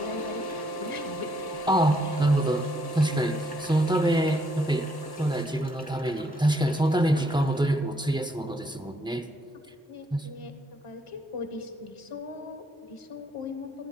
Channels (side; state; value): both; normal; correlation 0.71